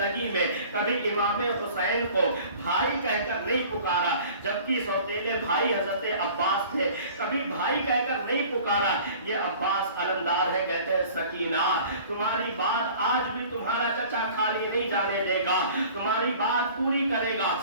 में कभी इमाम हुसैन को भाई कहकर नहीं पुकारा, जबकि सौतेले भाई हजरत अब्बास थे, कभी भाई कहकर नहीं पुकारा। ये अब्बास अलमदार है, कहते हैं सकीना तुम्हारी बात आज भी तुम्हारा चचा खाली नहीं जाने देगा, तुम्हारी बात पूरी करेगा।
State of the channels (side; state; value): both; inverted; correlation -0.47